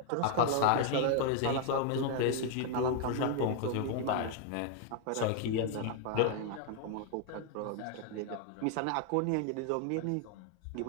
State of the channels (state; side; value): different; both; correlation 0.00